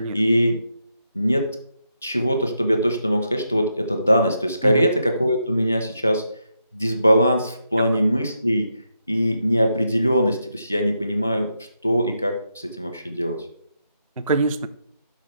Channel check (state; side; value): inverted; both; correlation -0.82